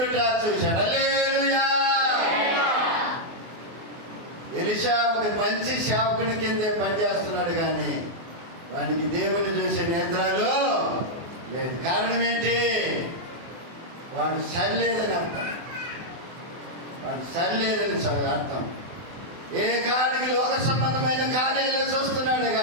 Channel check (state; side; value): late; left; 24 ms